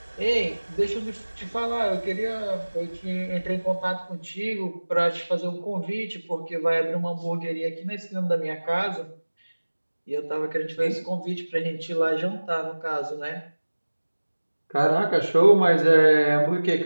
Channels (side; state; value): both; inverted; correlation -1.00